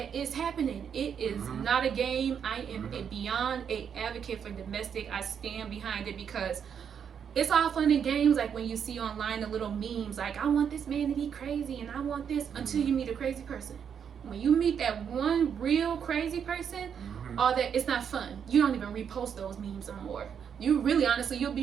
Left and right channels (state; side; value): quieter; left; 7.7 dB